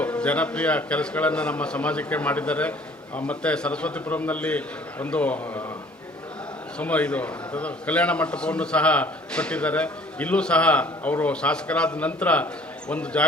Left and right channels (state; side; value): normal; both; correlation 0.53